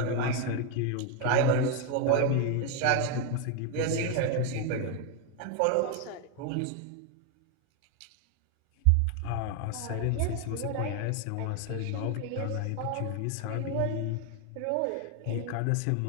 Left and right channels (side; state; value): both; different; correlation 0.01